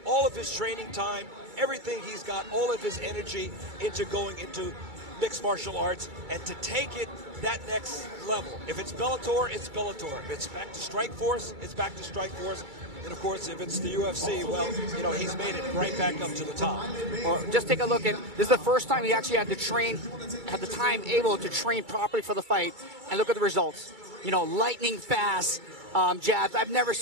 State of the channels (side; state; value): left; late; 2.3 ms